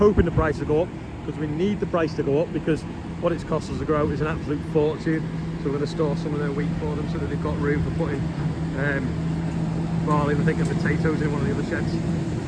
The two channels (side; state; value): both; identical; correlation 1.00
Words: the price to go up, because we need the price to go up, because what it's cost us to grow is an absolute fortune. So we're going to store some of their wheat for them so that they've got room for putting barley, I think, and potatoes in one of the other sheds.